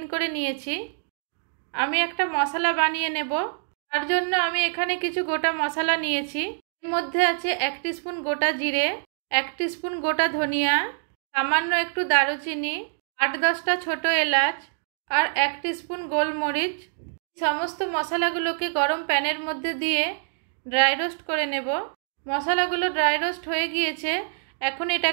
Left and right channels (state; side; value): silent; left; digital silence